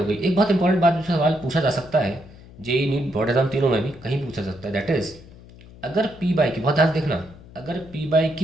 गई। एक बहुत इंपॉर्टेंट बात जो सवाल पूछा जा सकता है जेईई नीट बोर्ड एग्जाम तीनों में भी कहीं पूछा सकता है, दैट इज अगर P/Q, बहुत ध्यान देखना, अगर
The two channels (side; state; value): left; noise; hum, 20 dB below the sound